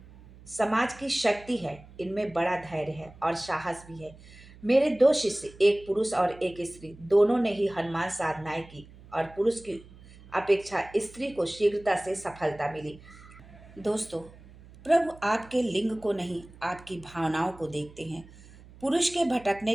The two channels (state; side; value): noise; right; hum, 21 dB below the sound